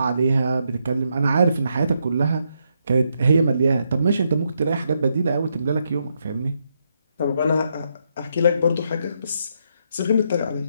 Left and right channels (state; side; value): inverted; both; correlation -0.79